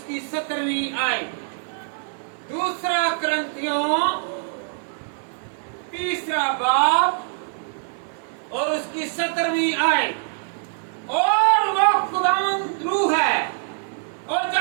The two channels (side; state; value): left; silent; digital silence